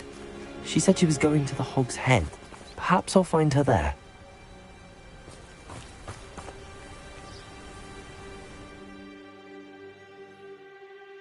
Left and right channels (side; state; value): both; identical; correlation 1.00